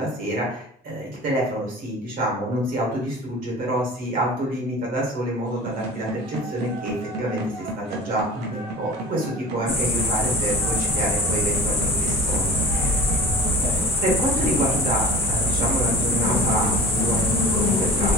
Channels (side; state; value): both; normal; correlation 0.40